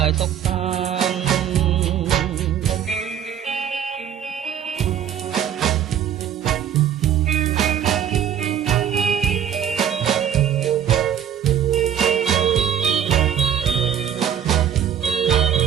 យសុខសាន្ត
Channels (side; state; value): left; quieter; 9.4 dB